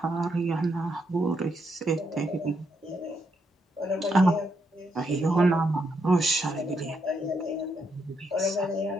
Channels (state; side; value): normal; both; correlation 0.78